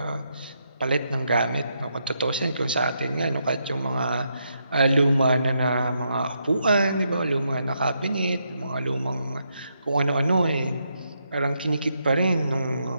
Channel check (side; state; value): both; inverted; correlation -0.80